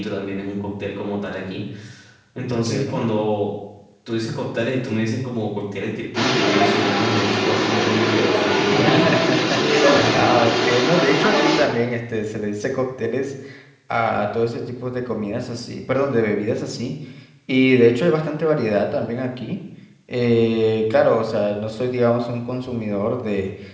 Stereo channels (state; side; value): identical; both; correlation 1.00